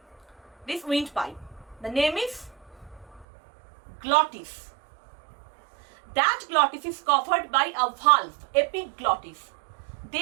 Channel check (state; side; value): drops out; left; at 3.2 s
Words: this windpipe. The name is glottis. That glottis is covered by a valve, epiglottis.